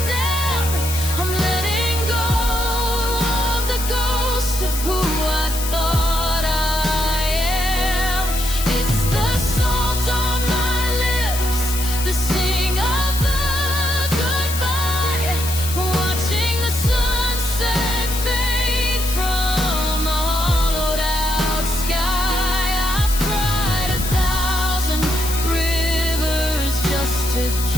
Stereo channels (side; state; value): left; noise; hiss, 6 dB below the sound